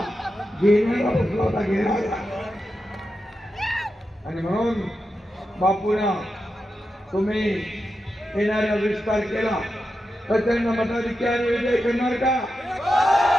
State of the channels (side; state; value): both; normal; correlation 0.89